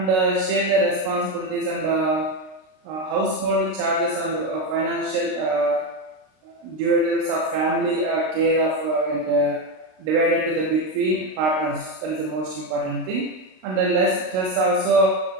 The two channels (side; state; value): left; late; 32 ms